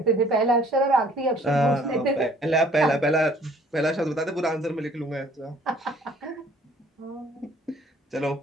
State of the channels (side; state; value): both; normal; correlation 0.57